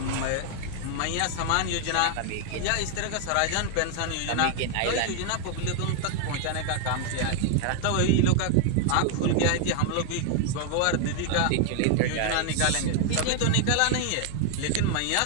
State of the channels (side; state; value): both; different; correlation 0.00